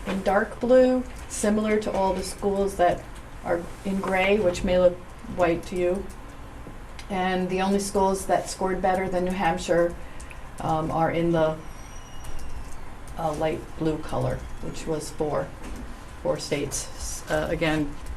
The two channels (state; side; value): identical; both; correlation 1.00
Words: dark blue, similar to all the schools that are in gray, which may look white to you. And the only schools that scored better than New Hampshire are in the light blue color, which was four states. Again,